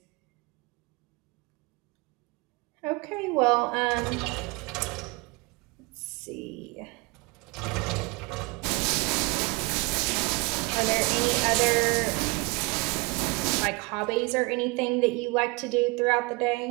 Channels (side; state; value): left; quieter; 27.3 dB